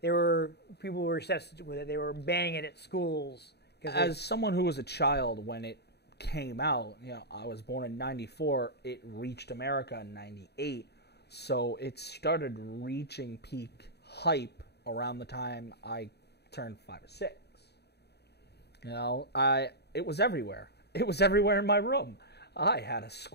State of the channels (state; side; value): late; right; 0.48 ms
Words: People were obsessed with it. They were banning it at schools. As someone who was a child when it came out, I was born in '94. It reached America in '98, so it started reaching peak hype around the time I turned 5 or 6. It was everywhere. It was everywhere in my room. I had a